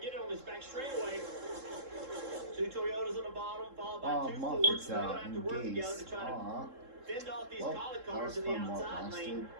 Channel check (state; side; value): late; left; 3.7 ms